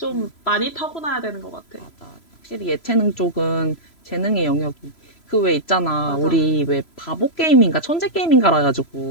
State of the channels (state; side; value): late; right; 3.0 ms